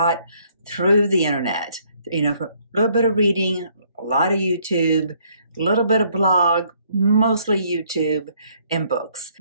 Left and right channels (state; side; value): inverted; both; correlation -0.66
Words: through the internet, for a little bit of reading, a lot of YouTube, a little bit of blog, mostly YouTube and books.